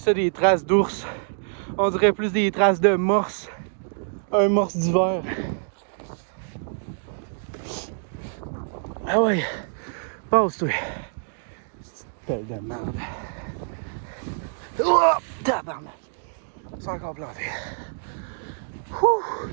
ça des traces d'ours. On dirait plus des traces de morse. Un morse d'hiver. Ah ouais. Passe-toi. C'est une pelle de merde. Oh! Tabarnak. C'est encore planté. Ouh.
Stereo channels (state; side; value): silent; left; digital silence